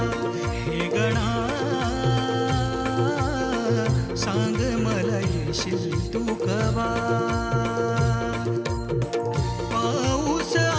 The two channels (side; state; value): both; identical; correlation 1.00